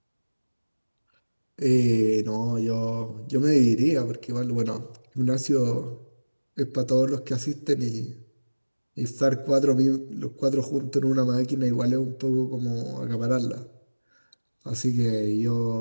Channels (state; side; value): inverted; both; correlation -1.00